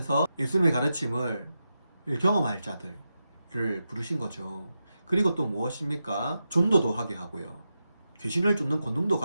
예수님의 가르침을 경험할 자들을 부르신 거죠. 그리고 또 무엇입니까? 전도도 하게 하고요, 귀신을 쫓는 권능도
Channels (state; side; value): inverted; both; correlation -0.89